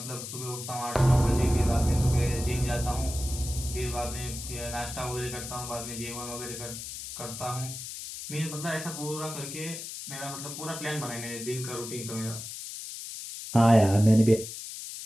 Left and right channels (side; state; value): left; noise; hiss, 9 dB below the sound